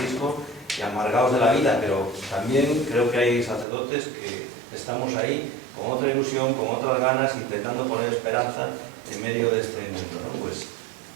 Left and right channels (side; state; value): left; drops out; at 3.7 s